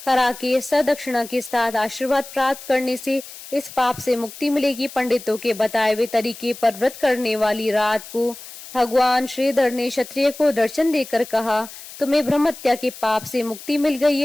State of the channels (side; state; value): left; noise; hiss, 15 dB below the sound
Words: करा के सदक्षिणा के साथ आशीर्वाद प्राप्त करने से इस पाप से मुक्ति मिलेगी। पंडितों के बताए हुए तरीके पर व्रत करने वाली रात को भगवान श्रीधर ने क्षत्रिय को दर्शन देकर कहा, तुम्हें ब्रह्महत्या के पाप से मुक्ति मिल गई